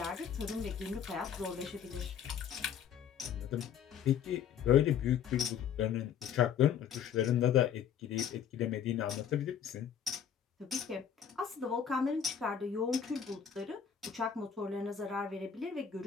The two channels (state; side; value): quieter; right; 8.3 dB